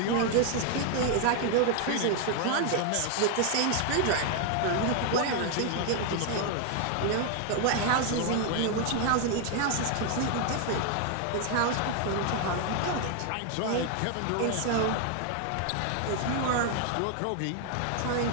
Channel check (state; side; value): different; both; correlation 0.01